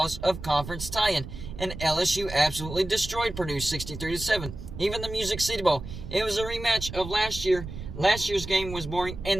of conference tie-in. And LSU absolutely destroyed Purdue 63-7. Even the Music City Bowl, it was a rematch of last year. Last year's game was boring,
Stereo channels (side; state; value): right; noise; rumble, 10 dB below the sound